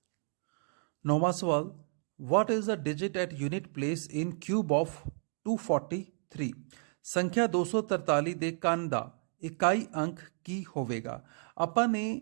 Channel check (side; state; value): left; silent; 56 dB below the other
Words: 9ਵਾਂ ਸਵਾਲ, what is the digit at unit place in cube of 243? ਸੰਖਿਆ 243 ਦੇ ਕੰਨ ਦਾ ਇਕਾਈ ਅੰਕ ਕੀ ਹੋਵੇਗਾ। ਆਪਾਂ ਨੇ